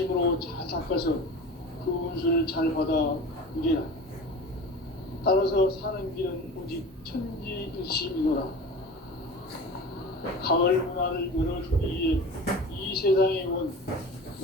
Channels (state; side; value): normal; both; correlation 0.35